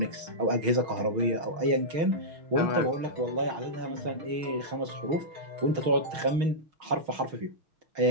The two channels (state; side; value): late; left; 6.3 ms